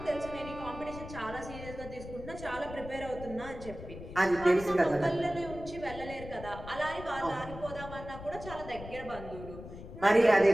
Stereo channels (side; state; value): left; noise; rumble, 12 dB below the sound